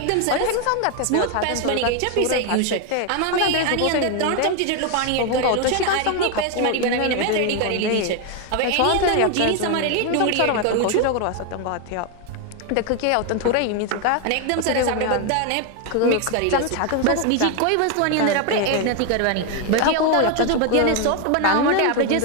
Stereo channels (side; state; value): both; different; correlation 0.01